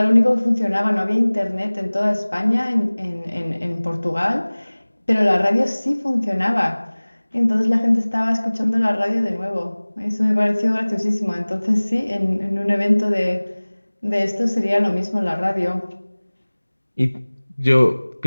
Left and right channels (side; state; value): both; inverted; correlation -1.00